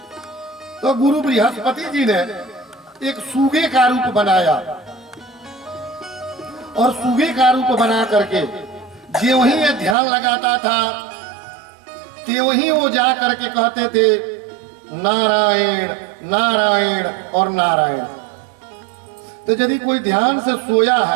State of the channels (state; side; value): drops out; left; at 10.0 s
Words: तो गुरु बृहस्पति जी ने एक सूगे का रूप बनाया और सूगे का रूप बना करके जो वही ये ध्यान लगाता था ते वही वो जा करके कहते थे नारायण नारायण और नारायण। तो यदि कोई ध्यान से सोया